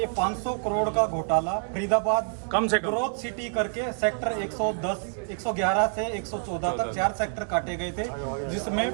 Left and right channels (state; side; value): silent; left; digital silence